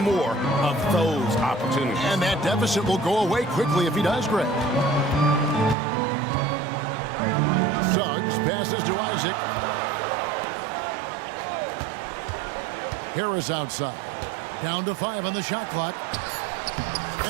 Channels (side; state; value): left; drops out; at 5.8 s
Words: more of those opportunities. And that deficit will go away quickly if he does, Greg. Suggs passes to Isaac. Harris outside. Down to 5 on the shot clock.